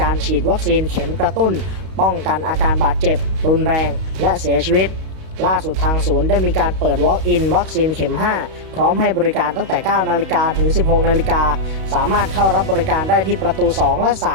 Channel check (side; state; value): left; late; 32 ms